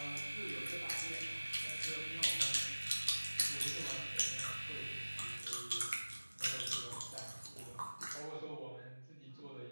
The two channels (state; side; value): inverted; both; correlation -1.00